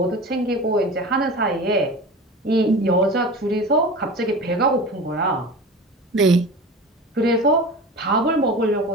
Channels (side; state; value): both; normal; correlation 0.33